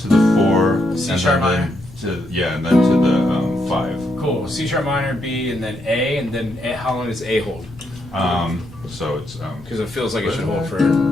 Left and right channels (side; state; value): both; normal; correlation 0.78